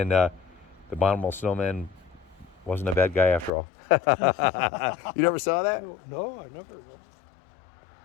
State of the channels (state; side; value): drops out; right; at 3.5 s